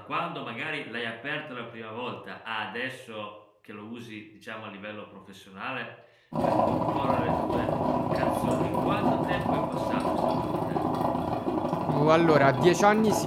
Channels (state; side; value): identical; both; correlation 1.00